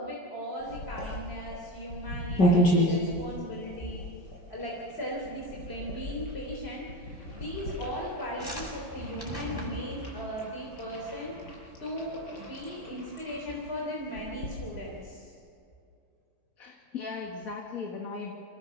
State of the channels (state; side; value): normal; both; correlation 0.24